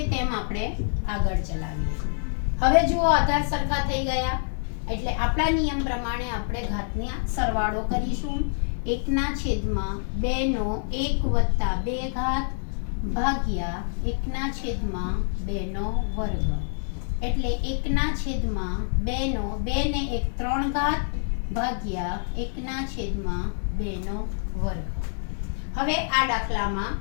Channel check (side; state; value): right; silent; digital silence